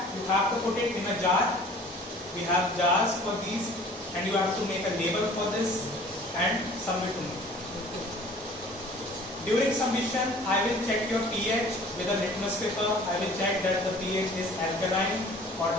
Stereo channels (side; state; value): both; normal; correlation 0.48